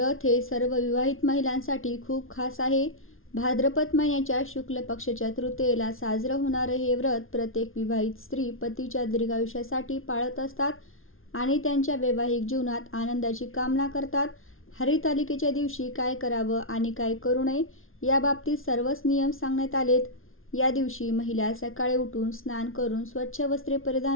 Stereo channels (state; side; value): late; right; 0.60 ms